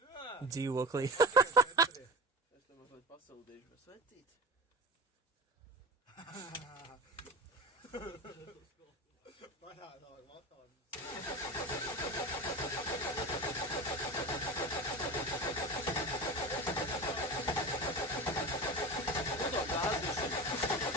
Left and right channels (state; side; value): normal; both; correlation 0.27